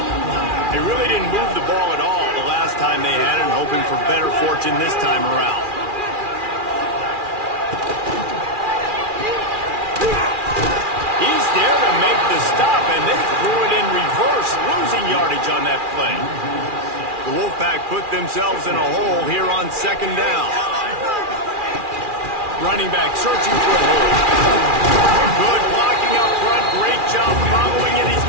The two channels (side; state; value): left; late; 2.4 ms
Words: They really didn't move the ball at all the last time they had it, hoping for better fortune this time around. He's there to make the stop, and they threw it in reverse, losing yardage on that play. The Wolfpack put themselves in a hole here on second down. Running back searching for a hole. Good blocking up front. Great job following it. He's